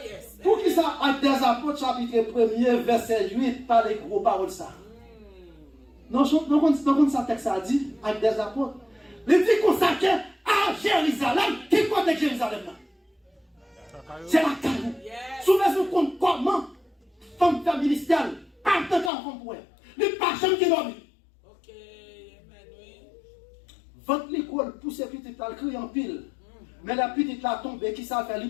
chapitre 1er, verset 8, par les gros paroles ça. Non, ça texte a dit, avec des apôtres. Il dit consacré à Jérusalem. Qui compte Jérusalem là? C'est la caille. Souvent, compte comment femme faire ministère, pas de temps qu'on pourrait. Les personnes qui dorment. Ok, amen, oui. Votre l'école, pousse les petites là, crier en pile. Mais la petite là tombe, qui ça fait, lui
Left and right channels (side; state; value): right; drops out; at 19.1 s